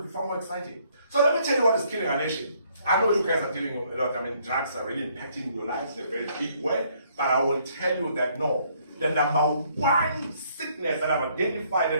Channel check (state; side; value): inverted; both; correlation -0.67